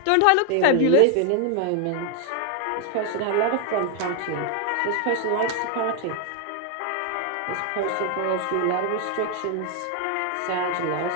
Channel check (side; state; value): both; different; correlation 0.00